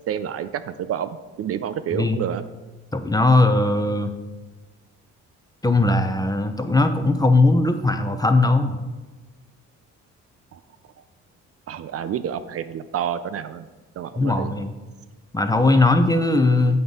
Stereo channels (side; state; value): both; normal; correlation 0.72